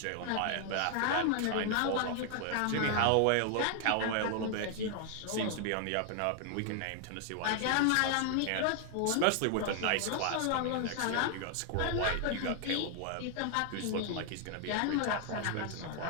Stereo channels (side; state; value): both; different; correlation 0.00